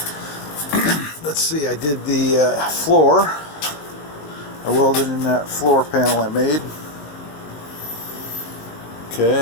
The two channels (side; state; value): right; late; 19 ms